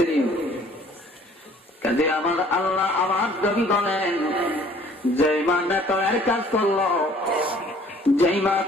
কাজে আমার আল্লাহ আমার নবী বলেন, যেই মা নেতরের কাজ করলো, যেই মা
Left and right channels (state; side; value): normal; both; correlation 0.55